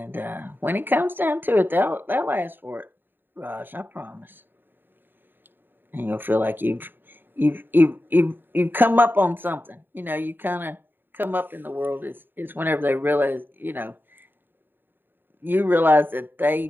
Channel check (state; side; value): late; left; 0.095 ms